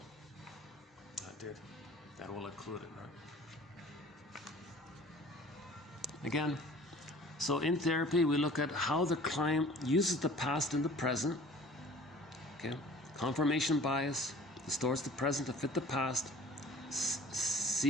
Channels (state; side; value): normal; both; correlation 0.47